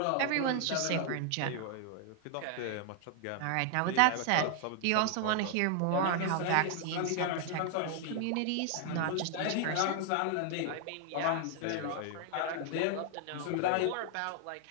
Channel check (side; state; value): both; different; correlation 0.00